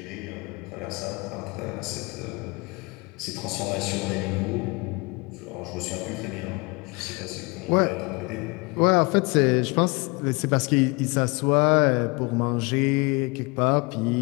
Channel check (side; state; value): right; quieter; 28.0 dB